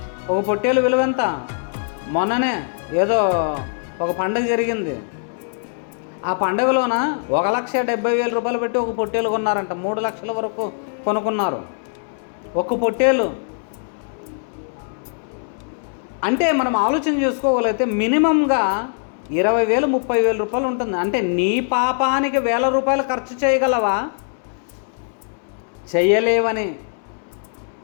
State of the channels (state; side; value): silent; right; 65 dB below the other